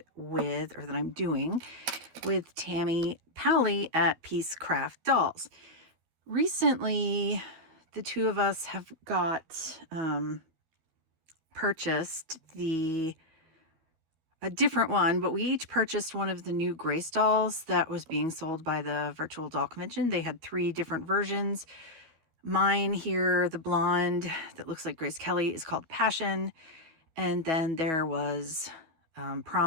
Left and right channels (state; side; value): late; left; 12 ms